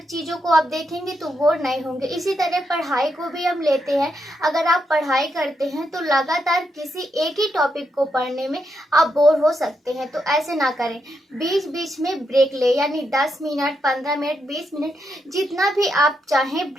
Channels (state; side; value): normal; both; correlation 0.82